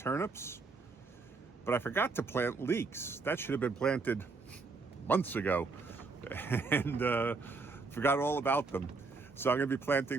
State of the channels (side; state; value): left; quieter; 4.2 dB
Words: but I forgot to plant leeks. That should have been planted months ago, and forgot all about them. So I'm going to be